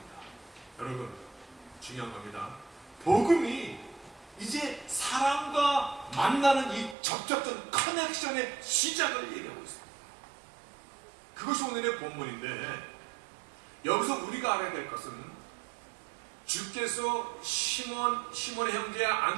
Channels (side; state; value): left; drops out; at 7.0 s